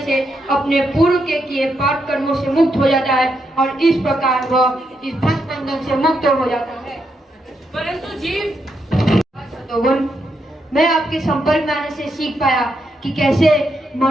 अपने पूर्व के किए पाप कर्मों से मुक्त हो जाता है और इस प्रकार वह इस भक्त बंधन से मुक्त हो जाता है। परंतु जीव, सतोगुण, मैं आपके संपर्क में आने से सीख पाया कि कैसे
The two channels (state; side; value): normal; both; correlation 0.81